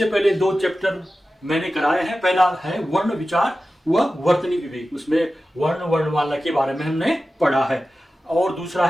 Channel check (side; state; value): both; normal; correlation 0.94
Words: पहले दो चैप्टर मैंने कराए हैं। पहला है वर्ण विचार व वर्तनी विवेक, उसमें वर्ण वर्णमाला के बारे में हमने पढ़ा है। और दूसरा